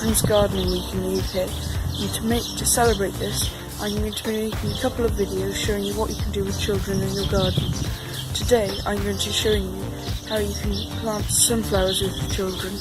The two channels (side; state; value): both; identical; correlation 1.00